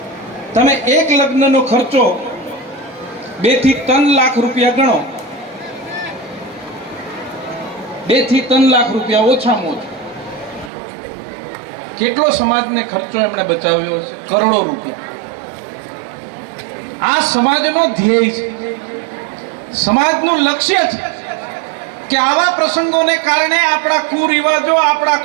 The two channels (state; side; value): drops out; left; at 10.7 s